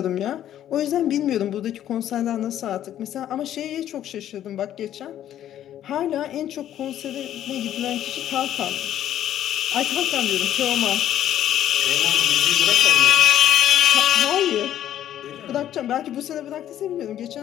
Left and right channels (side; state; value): right; quieter; 11.4 dB